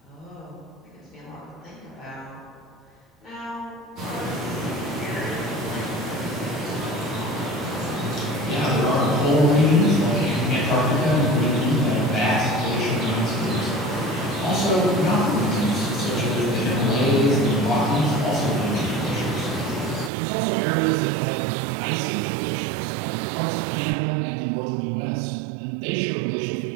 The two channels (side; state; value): left; drops out; at 20.1 s